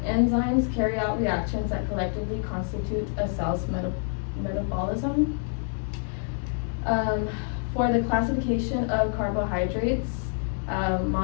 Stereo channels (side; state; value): right; silent; 60 dB below the other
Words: Enzymes carry out reactions that collectively constitute a cell's metabolism. For the classification of carbohydrates,